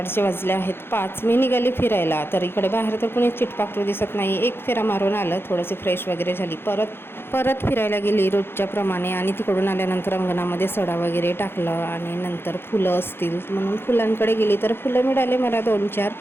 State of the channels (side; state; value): right; late; 0.11 ms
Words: वाजले आहेत 5. मी निघाली फिरायला. तर इकडे बाहेर तर कुणी चिटपाखरू दिसत नाही. एक फेरा मारून आलं, थोडीशी फ्रेश वगैरे झाली, परत फिरायला गेली रोजच्या प्रमाणे. आणि तिकडून आल्यानंतर अंगणामध्ये सडा वगैरे टाकलं आणि नंतर फुलं असतील म्हणून फुलांकडे गेली. तर फुलं मिळाले मला 2-4.